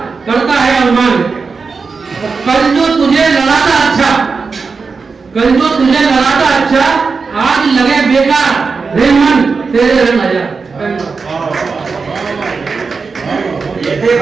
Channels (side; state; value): left; quieter; 4.8 dB